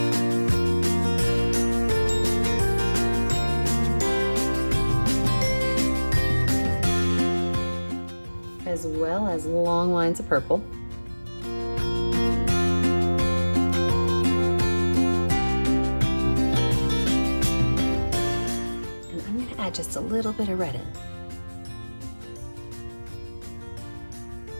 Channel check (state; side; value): inverted; both; correlation -1.00